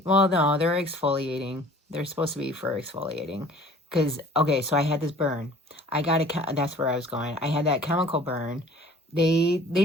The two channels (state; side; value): normal; both; correlation 0.49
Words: well, no, they're exfoliating. They're supposed to be for exfoliating. Because, okay, so I had this burn. That's where I was going. I had that chemical burn. They